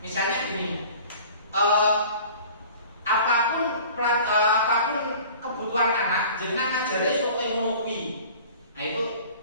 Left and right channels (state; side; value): inverted; both; correlation -0.44